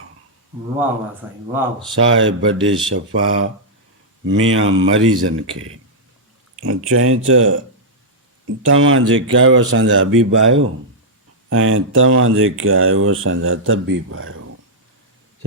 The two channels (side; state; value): both; normal; correlation -0.07